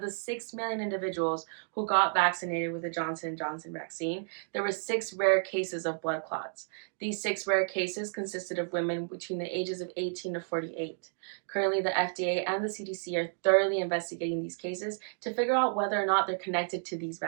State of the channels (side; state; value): left; silent; digital silence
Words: 6 million individuals who got vaccinated with the Johnson & Johnson vaccine, there were 6 rare cases of blood clots. These 6 rare cases consisted of women between the ages of 18 to 48. Currently, the FDA and the CDC are thoroughly investigating these cases to figure out whether or not they're connected to these